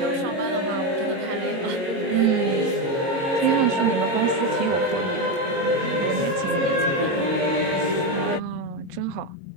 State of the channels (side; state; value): left; late; 22 ms